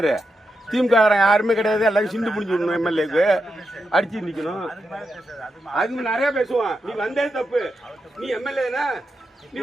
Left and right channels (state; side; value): normal; both; correlation 0.86